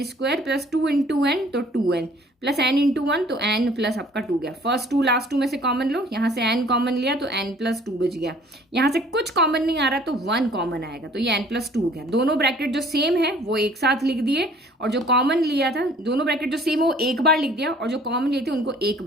+ 2 × n, तो 2n प्लस n × 1, तो n प्लस आपका 2 गया। फर्स्ट 2 लास्ट 2 में से कॉमन लो, यहाँ से n कॉमन लिया तो n+2 बच गया। यहाँ से कुछ कॉमन नहीं आ रहा तो 1 कॉमन आएगा, तो ये n+2 हो गया। दोनों ब्रैकेट जो सेम है वो एक साथ लिख दिए, और जो कॉमन लिया था, दोनों ब्रैकेट जो सेम है वो एक बार लिख दिया, और जो कॉमन लिए थे उनको एक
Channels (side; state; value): both; normal; correlation 0.54